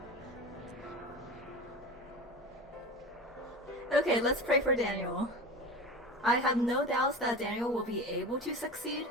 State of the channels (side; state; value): both; normal; correlation 0.31